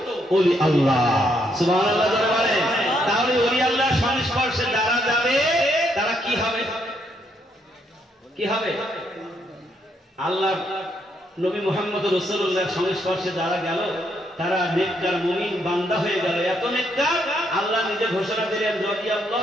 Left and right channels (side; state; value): both; normal; correlation 0.74